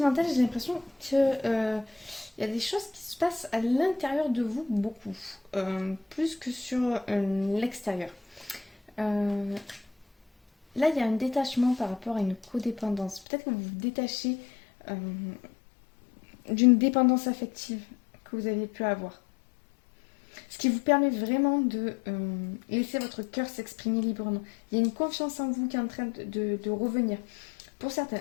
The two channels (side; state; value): right; drops out; at 13.2 s